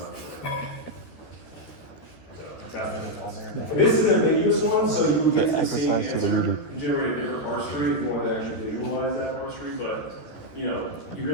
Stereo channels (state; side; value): late; right; 13 ms